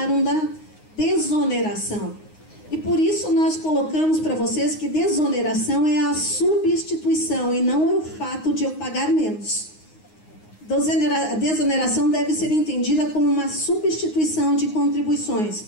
da desoneração. E por isso nós colocamos para vocês que desoneração é a substituição e não é o fato de eu pagar menos. A desoneração deve ser entendida como uma substituição de contribuições.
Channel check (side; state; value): right; late; 9.6 ms